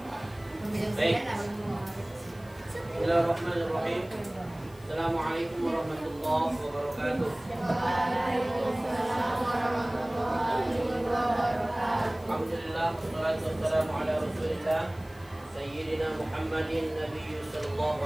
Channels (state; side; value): noise; left; hiss, 26 dB below the sound